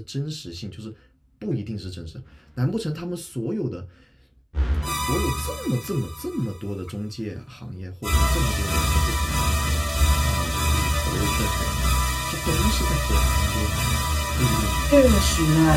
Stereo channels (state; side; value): identical; both; correlation 1.00